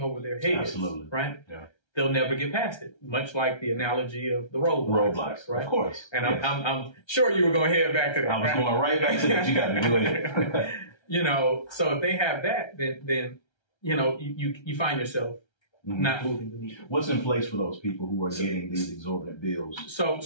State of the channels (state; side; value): late; right; 1.3 ms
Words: over their heads, absolutely, right? Yeah. They'll never get past it, much like the analogy of the roadblocks, right? Of course. And yes. I'm sure you were going to head back to that. I was going right back to that. You got to do it. So if they have that, then you find yourself not moving the needle. What's in place for those people who are getting these exorbitant bills?